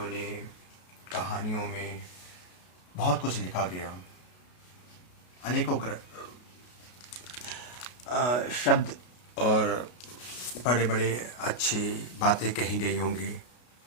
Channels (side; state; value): right; late; 33 ms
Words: ने, कहानियों में बहुत कुछ लिखा गया। अनेकों शब्द और बड़े बड़े अच्छी बातें कही गई होंगी।